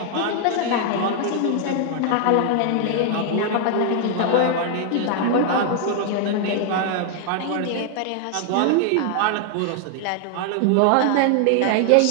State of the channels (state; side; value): different; both; correlation 0.00